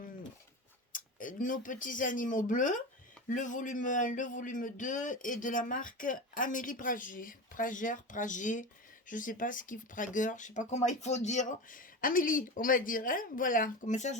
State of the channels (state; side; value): normal; both; correlation 0.25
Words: Nos petits animaux bleus, le volume 1, le volume 2 et de la marque Amélie Prager, je sais pas ce qu'il Prager, je sais pas comment il faut dire. Amélie, on va dire, hein, voilà, comme ça